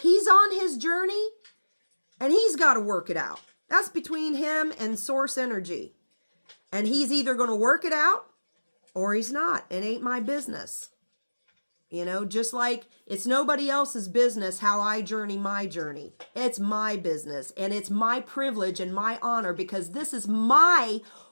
on his journey and he's got to work it out. That's between him and Source Energy. And he's either going to work it out or he's not. It ain't my business. You know, just like it's nobody else's business how I journey my journey. It's my business and it's my privilege and my honor because this is my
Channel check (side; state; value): both; inverted; correlation -1.00